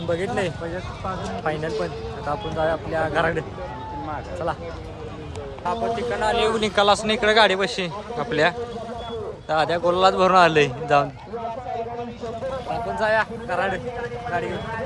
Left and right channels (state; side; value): identical; both; correlation 1.00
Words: बघितले फायनल पण. आता आपण जाऊया आपल्या घराकडे. चला आपण तिकडनं आले. निकालाच नाही इकडे गाडी बसशी आपल्या. दाद्या गोलाच भरून आलंय जाऊन. आपण जाऊया घराकडे गाडी घेऊन.